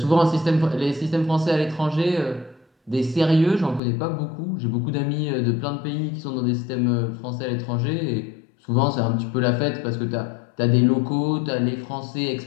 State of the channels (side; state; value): right; drops out; at 3.8 s